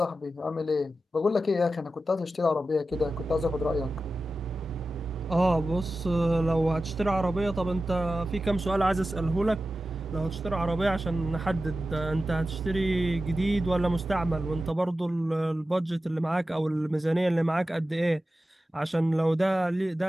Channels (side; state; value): both; normal; correlation 0.93